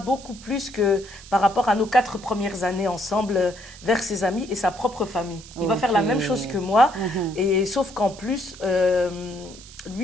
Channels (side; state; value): right; noise; hiss, 18 dB below the sound